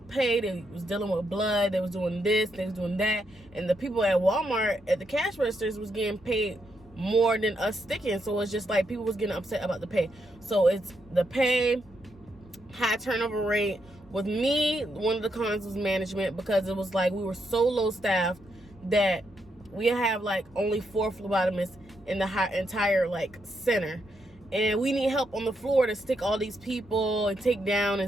pay. They was dealing with blood. They was doing this. They was doing that. And the people at Walmart at the cash registers was getting paid more than us sticking. So it's just like people was getting upset about the pay. So it's the pay, high turnover rate. With me, one of the cons was management, because it was like we were so low staffed that we have like only 4 phlebotomists in the entire like center. And we need help on the floor to stick all these people and take down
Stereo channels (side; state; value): both; normal; correlation 0.80